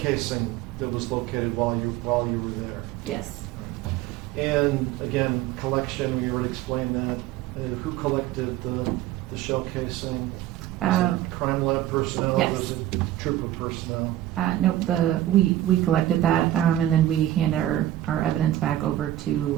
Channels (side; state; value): left; quieter; 13.4 dB